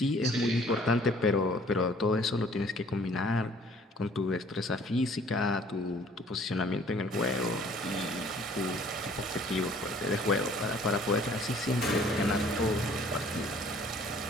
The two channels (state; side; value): normal; both; correlation 0.56